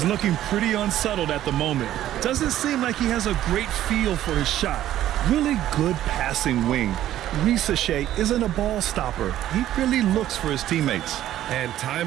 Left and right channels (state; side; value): quieter; left; 12.7 dB